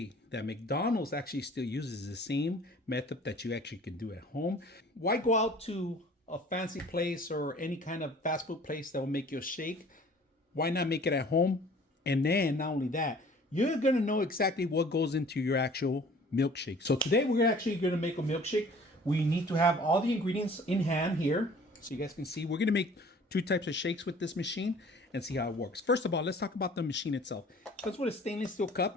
that McDonald's actually still uses the same method that you actually can do at home. Why go out to a fancy place or any kind of fast food place that will make you a shake? Why not make it at home? And then not only that, you're gonna know exactly what goes into your actual milkshake. So today we're actually gonna make a milkshake. We need to have all the ingredients in hand here so you guys can see. We're going to make two types of shakes with this machine and see how it works. First of all, let's talk about the machine itself. That's with a stainless steel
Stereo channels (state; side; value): normal; both; correlation 0.50